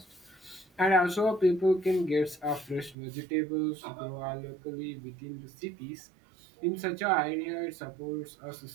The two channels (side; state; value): left; drops out; at 3.0 s